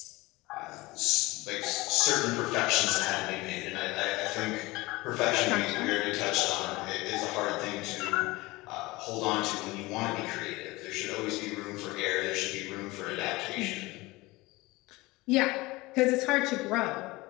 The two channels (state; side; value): quieter; right; 21.3 dB